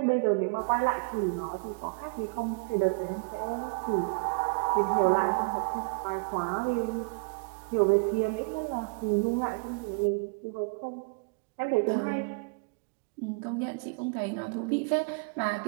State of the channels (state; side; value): quieter; left; 34.3 dB